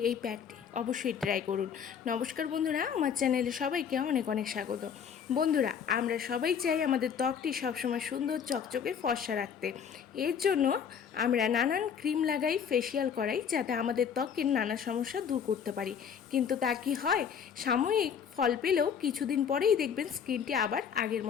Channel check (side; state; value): right; quieter; 7.5 dB